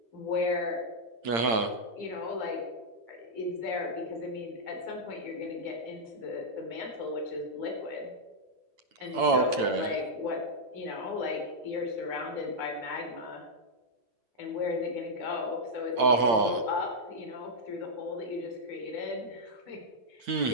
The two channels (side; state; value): left; late; 8.9 ms